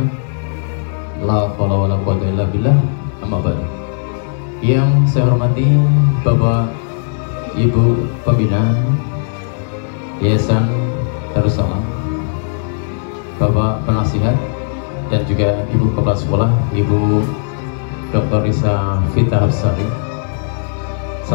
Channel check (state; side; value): silent; right; digital silence